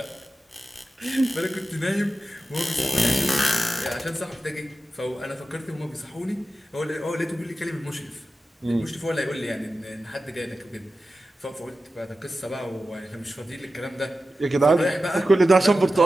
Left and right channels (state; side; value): normal; both; correlation 0.93